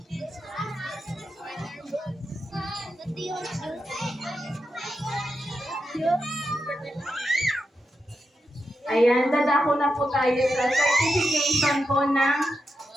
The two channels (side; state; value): both; normal; correlation 0.87